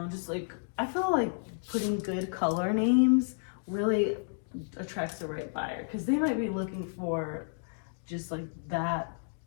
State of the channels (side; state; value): right; silent; digital silence